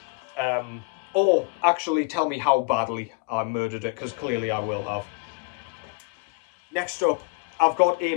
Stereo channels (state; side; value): quieter; right; 28.8 dB